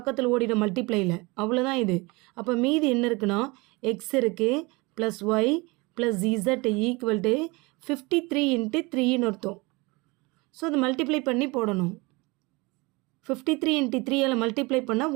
ஓடிடும் மல்டிப்ளையில், அவ்வளோதான் இது. அப்போ மீதி என்ன இருக்குன்னா, எக்ஸ் இருக்குது plus Y plus Z equal to 53 × 3ன்னு அர்த்தம். ஸோ அது மல்டிப்ளை பண்ணி போடணும். 53 × 3ஆல் மல்டிப்ளை பண்ணால்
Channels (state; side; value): quieter; left; 25.2 dB